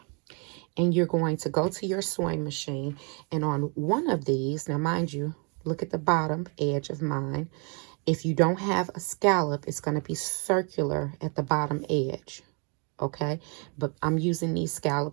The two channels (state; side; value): quieter; left; 35.6 dB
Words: And you're going to go to your sewing machine, and on one of these, now mind you, look at the bottom edge of mine. If you don't have a scallop, it's going to be circular at the bottom edge. Okay, but I'm using these